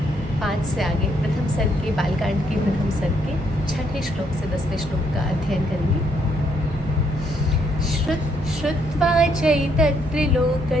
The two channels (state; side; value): normal; both; correlation 0.72